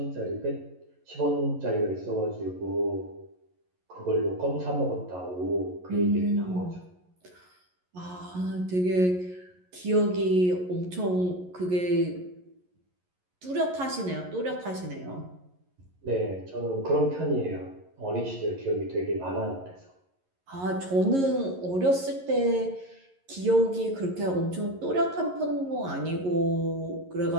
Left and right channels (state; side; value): late; left; 11 ms